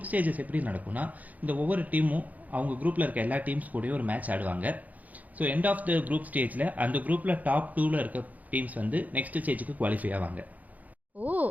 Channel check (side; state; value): left; late; 0.077 ms